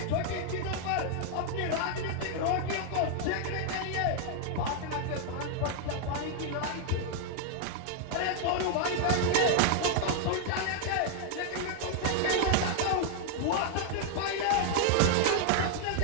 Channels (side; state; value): both; different; correlation 0.00